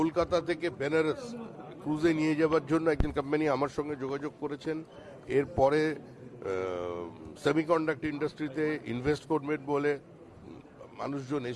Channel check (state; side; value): identical; both; correlation 1.00